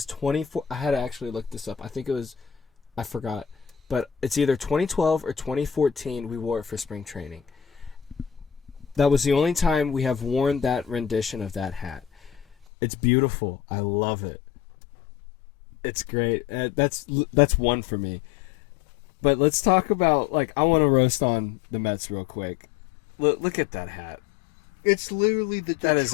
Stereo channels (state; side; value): drops out; right; at 12.7 s